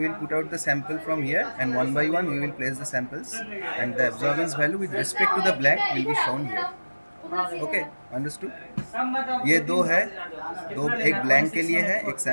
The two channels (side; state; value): both; inverted; correlation -1.00